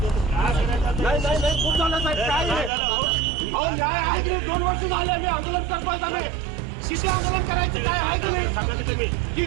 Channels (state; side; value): drops out; left; at 2.7 s